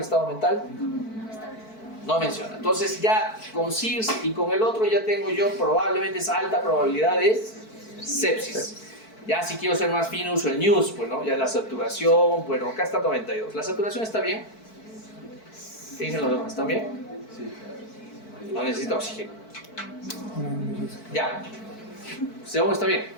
estado mental? No menciona. Entonces ya con SIRS y con el otro ya tengo yo probablemente esa alta probabilidad de sepsis. Ya si quiero ser más fino uso el NEWS, pues no, ya la saturación, bueno, acá está 92. ¿La saturación está bien? ¿Qué dicen los demás? ¿Están bien? Sí. No necesita oxígeno. Ya. ¿Según está bien?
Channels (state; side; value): late; right; 4.5 ms